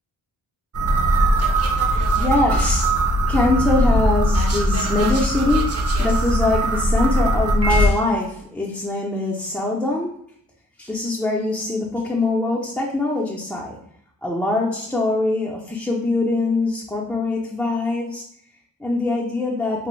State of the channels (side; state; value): both; normal; correlation 0.66